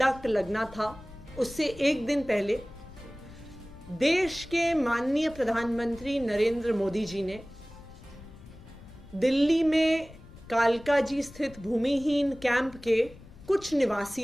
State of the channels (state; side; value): noise; left; rumble, 20 dB below the sound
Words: लगना था, उससे एक दिन पहले देश के माननीय प्रधानमंत्री नरेंद्र मोदी जी ने दिल्ली में कालकाजी स्थित भूमिहीन कैंप के कुछ